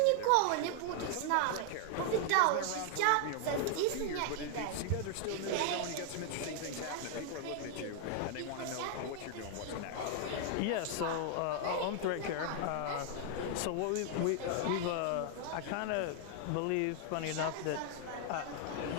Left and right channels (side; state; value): both; different; correlation 0.00